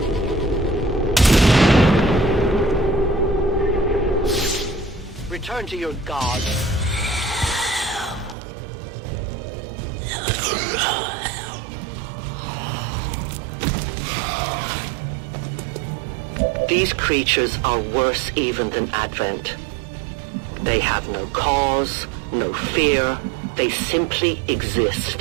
Return to your god. These creatures are worse even than Advent. They have no cause, no fear. They simply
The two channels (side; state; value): left; drops out; at 8.3 s